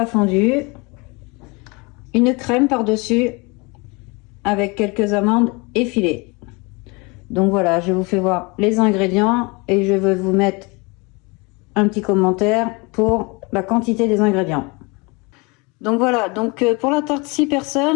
fondu, une crème par-dessus avec quelques amandes effilées. Donc voilà, je vous fais voir les ingrédients et je vais vous mettre un petit commentaire pour la quantité des ingrédients. Donc voilà, donc pour la tarte 6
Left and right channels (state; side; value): quieter; right; 27.8 dB